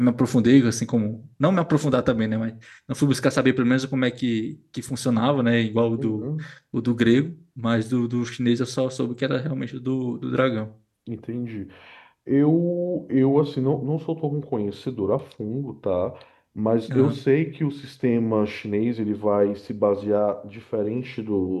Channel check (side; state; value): both; identical; correlation 1.00